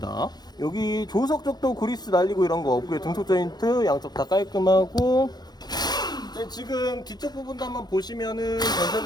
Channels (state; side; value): late; right; 0.19 ms